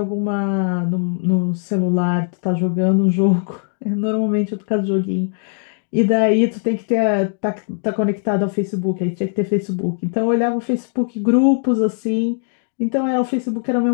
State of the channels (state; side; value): silent; right; 58 dB below the other